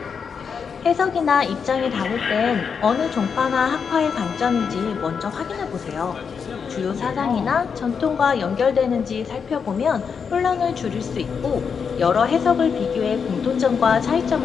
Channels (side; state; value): right; quieter; 6.3 dB